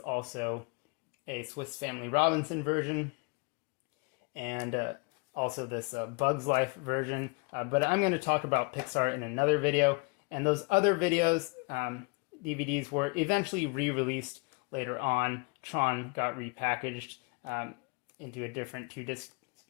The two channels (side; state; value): right; quieter; 30.2 dB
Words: also a Swiss Family Robinson version, and also this Bugs Life version. But I'm going to talk about Pixar in another video. And those other videos, DVDs, were eventually re-released later on. Tron got repackaged into a different two-disc